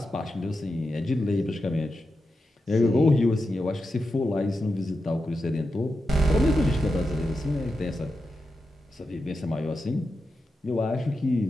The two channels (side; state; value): both; normal; correlation 0.89